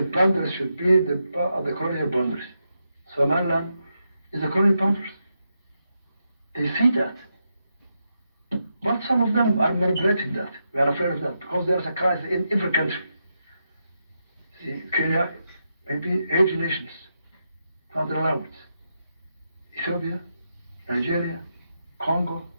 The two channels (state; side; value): inverted; both; correlation -0.85